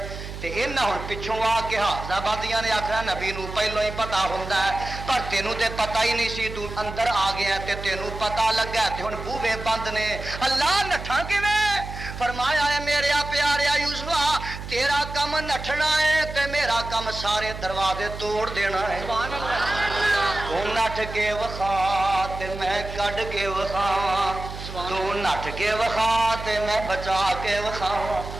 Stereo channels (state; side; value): noise; right; hum, 10 dB below the sound